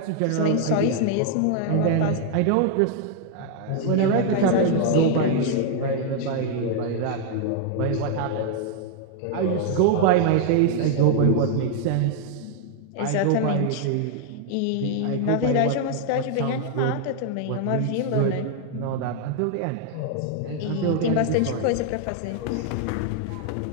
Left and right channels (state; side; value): different; both; correlation 0.00